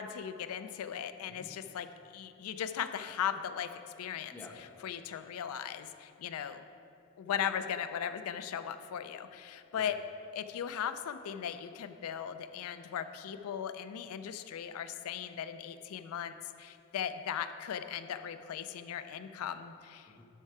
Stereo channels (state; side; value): quieter; right; 8.3 dB